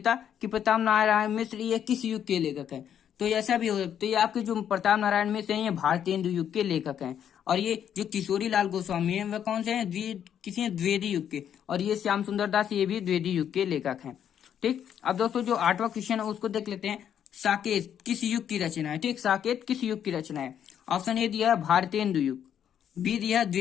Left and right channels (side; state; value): right; quieter; 9.2 dB